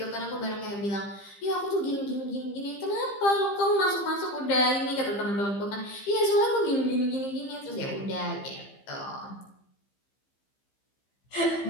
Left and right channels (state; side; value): late; right; 15 ms